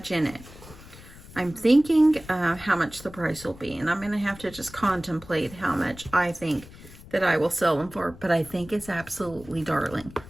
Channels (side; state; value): left; noise; rumble, 18 dB below the sound